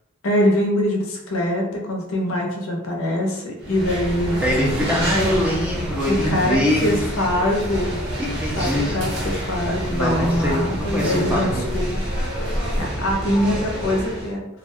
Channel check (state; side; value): normal; both; correlation 0.54